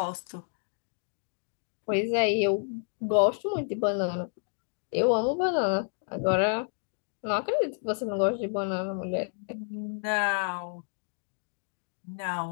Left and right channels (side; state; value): right; silent; 57 dB below the other